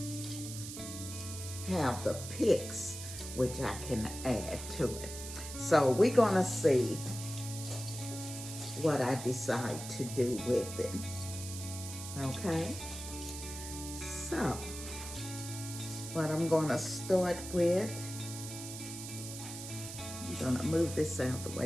have the picks which I can add to it. So we're gonna see what I decide to do with it. Okay, so what I'm gonna start with, I'm gonna move this out of the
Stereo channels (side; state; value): right; noise; hiss, 9 dB below the sound